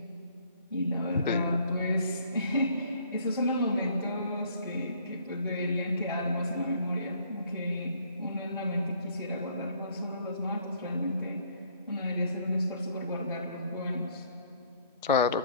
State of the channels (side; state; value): both; inverted; correlation -0.61